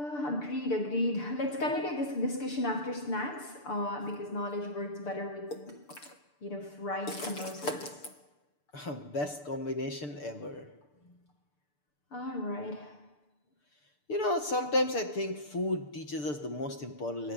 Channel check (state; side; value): late; right; 6.8 ms